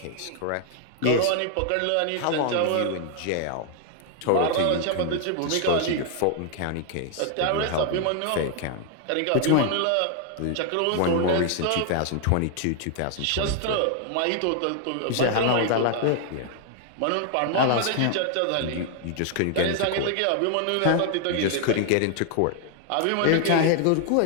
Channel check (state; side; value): different; both; correlation 0.00